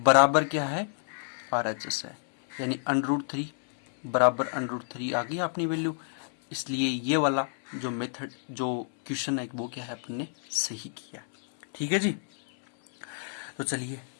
क्या है RHS है, यानी √3 बराबर √3 आ गई अपनी वैल्यू। इसलिए ये वाला जो मेथड, जो क्वेश्चन है वो क्या है अपन ने सही किया। ठीक है जी, तो चलिए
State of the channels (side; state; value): right; silent; 59 dB below the other